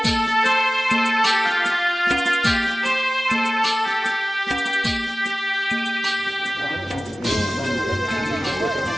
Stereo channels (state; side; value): normal; both; correlation 0.97